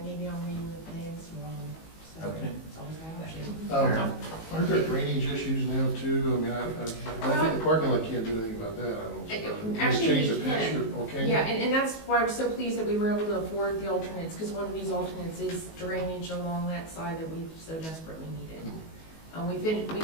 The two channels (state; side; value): late; right; 19 ms